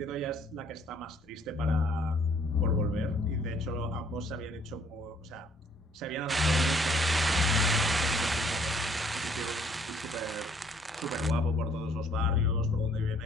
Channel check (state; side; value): normal; both; correlation 0.62